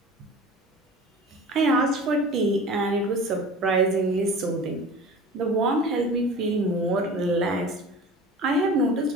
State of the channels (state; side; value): normal; both; correlation 0.39